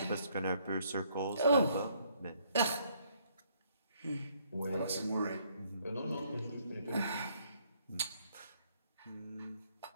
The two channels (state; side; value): inverted; both; correlation -0.68